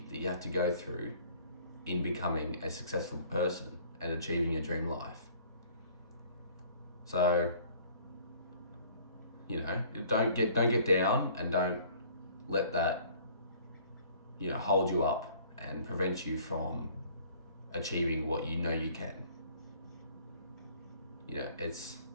that you have to go through in becoming a successful person and achieving your dream life. So, you know, don't get down, and don't let that, you know, hold you up and prevent you from achieving what you know you can. You know,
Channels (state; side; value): inverted; both; correlation -0.54